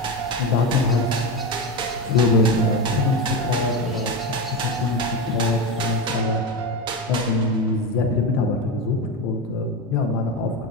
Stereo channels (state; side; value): normal; both; correlation 0.17